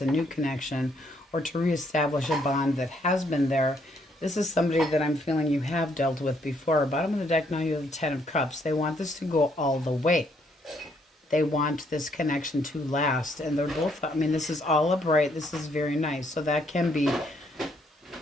new connection, or to reestablish a bond that has been there. This is somebody that I'm feeling you have dealt with before. Bottom of the deck, now you have the 10 of Cups. They want this to go all the way. They want this connection to last. And they're both, this is all upright. This is very nice. So that can be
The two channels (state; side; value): normal; both; correlation 0.70